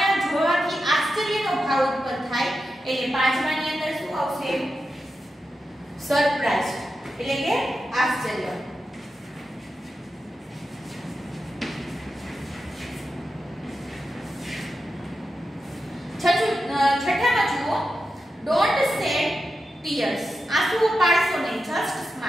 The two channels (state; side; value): normal; both; correlation 0.90